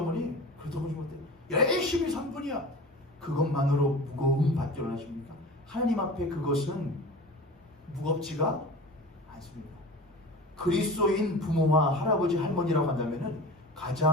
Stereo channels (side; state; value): both; normal; correlation 0.35